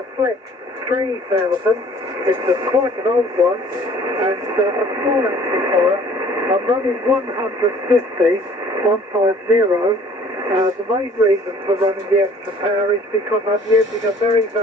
Flex 3000, it's quite an old one, and a small amplifier. I'm running 150. The main reason for running the extra power is because I'm using a very,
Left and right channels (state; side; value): normal; both; correlation 0.53